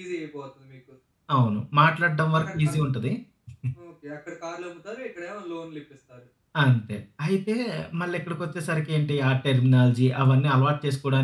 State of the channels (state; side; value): identical; both; correlation 1.00